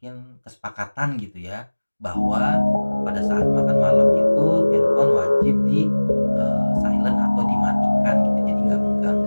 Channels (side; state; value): both; inverted; correlation -1.00